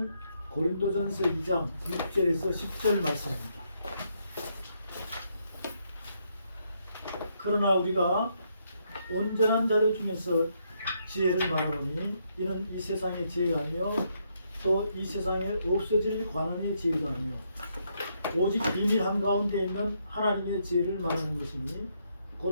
고린도전서 2장 6절에서 10절 말씀입니다. 그러나 우리가 온전한 자들 중에서 지혜를 말하노니 이는 이 세상의 지혜가 아니요 또 이 세상에 없어질 관원의 지혜가 아니요 오직 비밀 한가운데 있는 하나님의 지혜를 말하는 것이니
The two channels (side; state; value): both; inverted; correlation -0.76